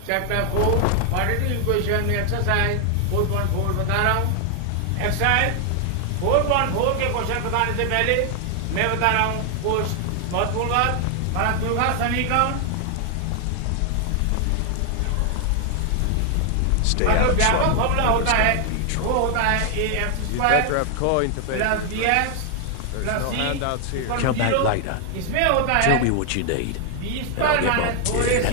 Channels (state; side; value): different; both; correlation 0.00